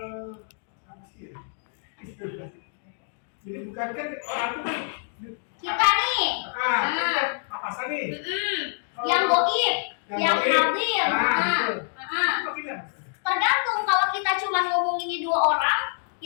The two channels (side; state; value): right; silent; digital silence